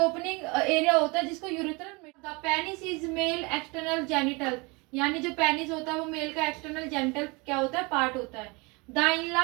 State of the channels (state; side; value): quieter; left; 27.5 dB